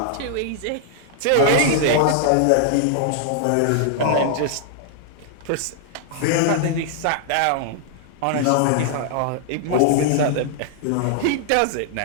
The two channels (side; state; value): both; different; correlation 0.00